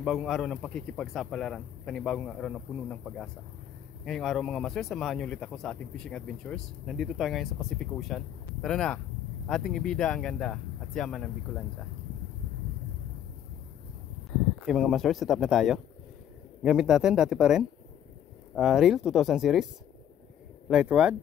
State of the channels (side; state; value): right; quieter; 10.0 dB